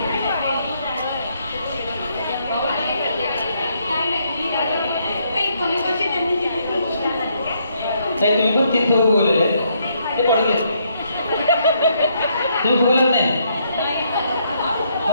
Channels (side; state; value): both; inverted; correlation -0.73